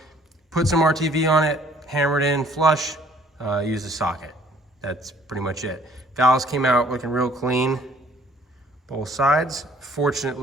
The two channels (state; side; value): normal; both; correlation 0.58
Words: Put some RTV on it, hammer it in flush, use a socket. That's pretty much it. Valves came out looking real clean, both sides.